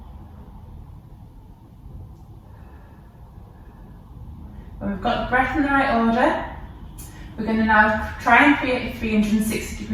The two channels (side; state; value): both; identical; correlation 1.00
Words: When we've got the breath in the right order, we're going to now try and create a